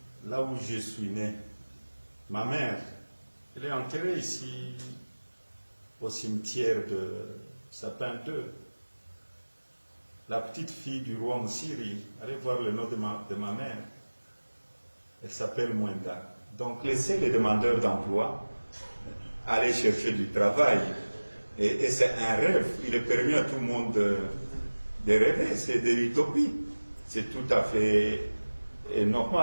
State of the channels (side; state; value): both; inverted; correlation -1.00